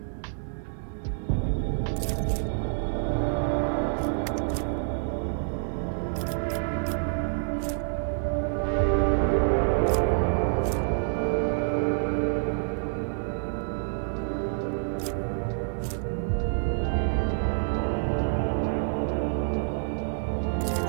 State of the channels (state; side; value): silent; left; digital silence